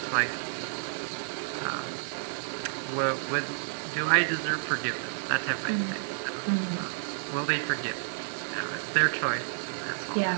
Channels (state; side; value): silent; left; digital silence